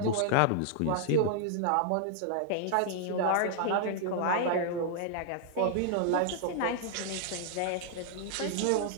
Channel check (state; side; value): different; both; correlation 0.00